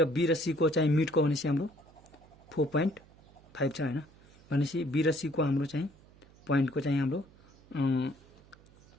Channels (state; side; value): noise; right; hum, 26 dB below the sound